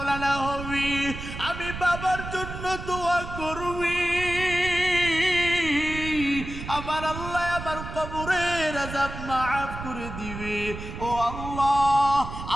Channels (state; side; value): noise; right; rumble, 9 dB below the sound